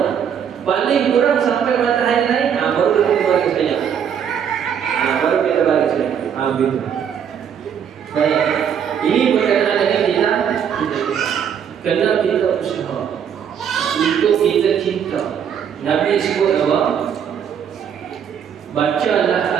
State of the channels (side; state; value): left; quieter; 8.2 dB